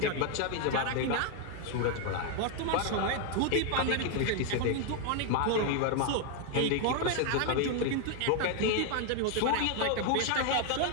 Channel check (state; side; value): different; both; correlation 0.01